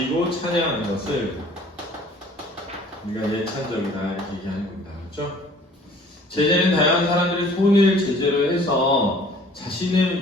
찬양하는 것을 우리가 예찬적이다 이렇게 얘기하는 겁니다. 그렇죠? 제재는 다양한 사람들의 손을 제재로 해서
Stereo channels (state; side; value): normal; both; correlation 0.52